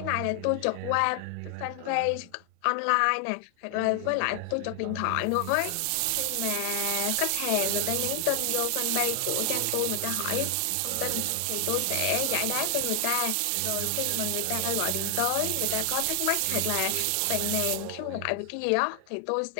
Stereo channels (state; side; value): different; both; correlation 0.00